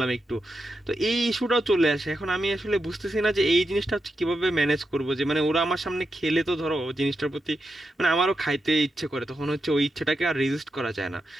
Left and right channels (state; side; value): normal; both; correlation 0.86